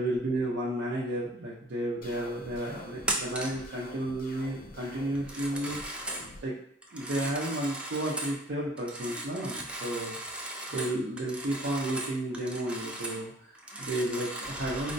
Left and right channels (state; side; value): normal; both; correlation 0.51